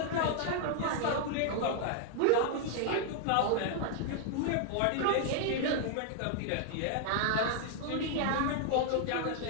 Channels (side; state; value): both; different; correlation 0.00